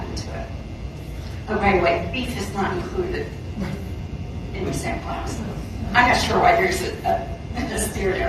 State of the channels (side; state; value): both; identical; correlation 1.00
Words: to it. Oh, by the way, beef is not included in the sample house. I'm not sure why there's a steer